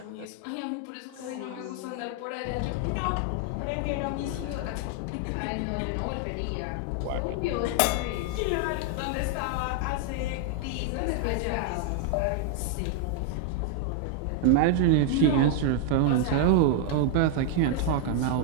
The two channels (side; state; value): both; different; correlation 0.00